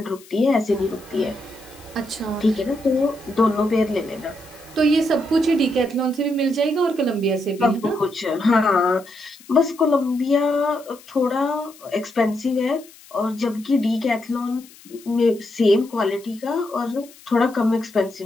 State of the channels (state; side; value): noise; left; hiss, 23 dB below the sound